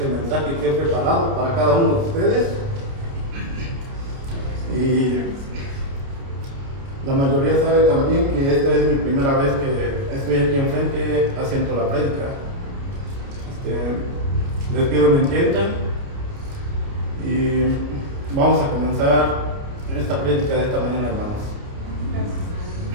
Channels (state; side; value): late; left; 29 ms